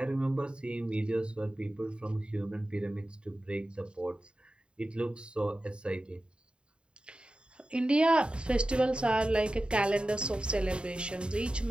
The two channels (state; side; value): late; left; 0.052 ms